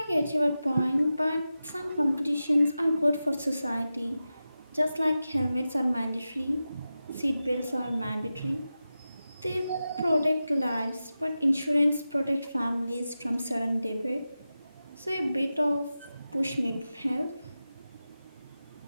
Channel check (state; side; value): inverted; both; correlation -0.93